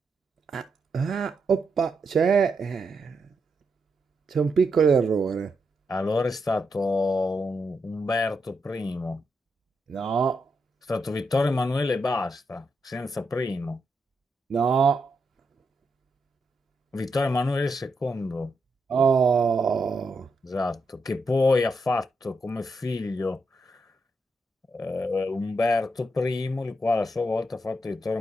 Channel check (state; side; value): normal; both; correlation 0.82